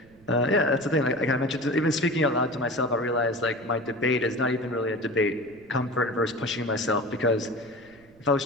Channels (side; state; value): right; noise; rumble, 27 dB below the sound